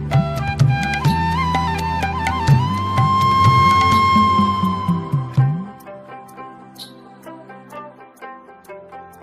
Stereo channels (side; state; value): both; identical; correlation 1.00